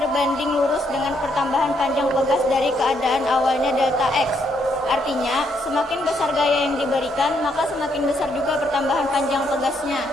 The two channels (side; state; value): both; normal; correlation 0.74